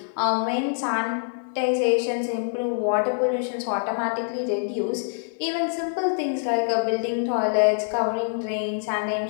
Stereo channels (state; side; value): silent; right; digital silence